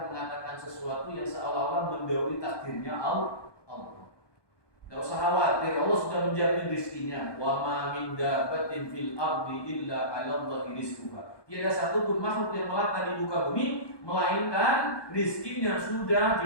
mengatakan sesuatu yang seolah-olah mendahului takdirnya Allah. Tidak usah khawatir, Allah sudah menjamin rizkinya. Wa ma min dabbatin fil ardi illa 'ala Allahi rizquha. Tiada satu pun makhluk yang melata di muka bumi melainkan rizkinya sudah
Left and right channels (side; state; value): right; late; 1.2 ms